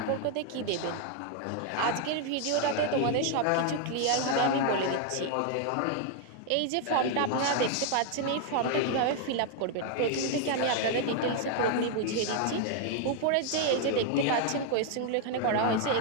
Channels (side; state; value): both; different; correlation 0.00